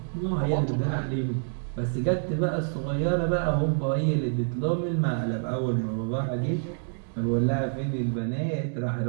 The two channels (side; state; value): left; silent; digital silence